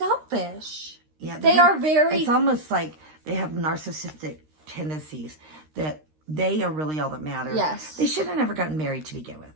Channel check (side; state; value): left; late; 13 ms